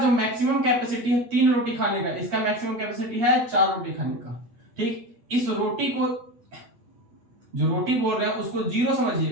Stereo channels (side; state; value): left; late; 8.5 ms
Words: मैक्सिमम कैपेसिटी है 3 रोटी खाने का, इसका मैक्सिमम कैपेसिटी है 4 रोटी खाने का। ठीक, इस रोटी को, जो रोटी बोल रहे हैं उसको 0